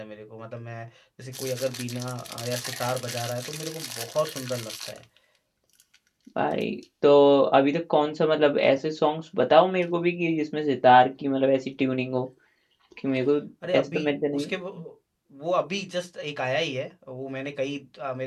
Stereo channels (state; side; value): identical; both; correlation 1.00